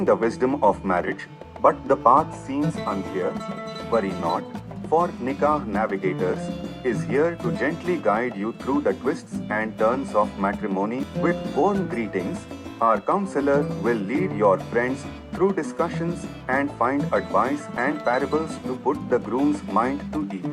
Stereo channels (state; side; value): identical; both; correlation 1.00